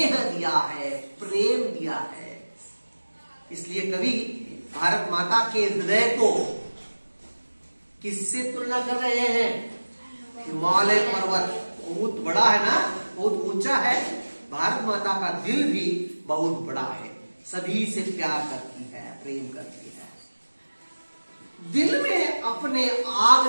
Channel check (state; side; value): inverted; both; correlation -1.00